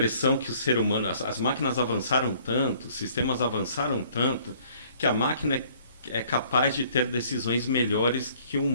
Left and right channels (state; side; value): inverted; both; correlation -0.58